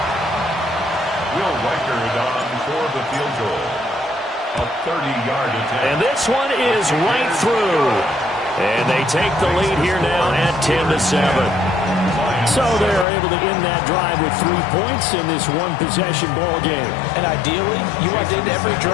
Will Reichard on for the field goal. A 30-yard attempt. And this one is right through. And they take the lead here now at 10-7. So they're able to end that drive with 3 points in this one-possession ball game. And ideally, you want to end every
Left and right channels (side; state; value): right; drops out; at 13.1 s